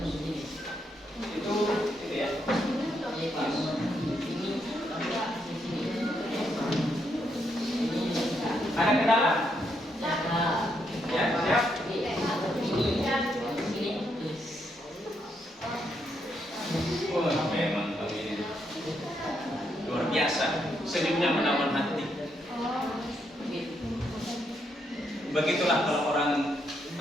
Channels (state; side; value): normal; both; correlation 0.78